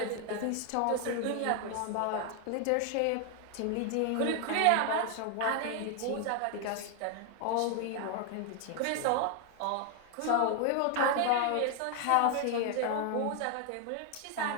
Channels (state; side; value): different; both; correlation 0.00